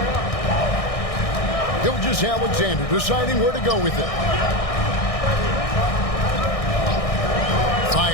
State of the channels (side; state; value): right; late; 1.6 ms